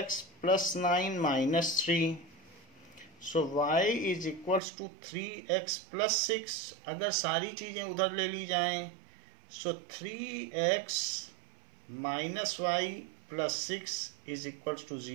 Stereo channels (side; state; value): left; drops out; at 4.6 s